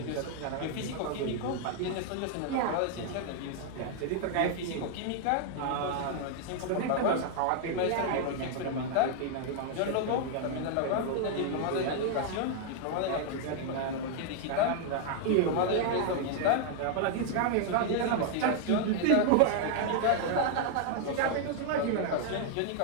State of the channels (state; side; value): different; both; correlation 0.00